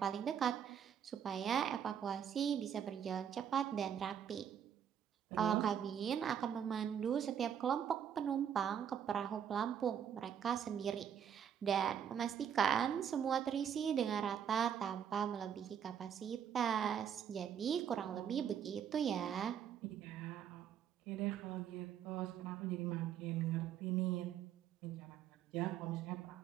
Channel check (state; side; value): quieter; left; 8.6 dB